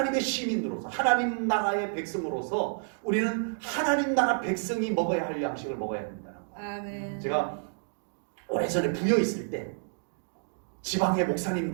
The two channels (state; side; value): silent; left; digital silence